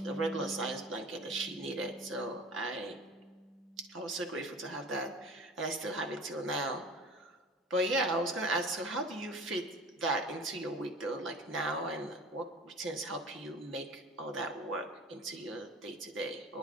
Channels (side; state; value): both; normal; correlation 0.40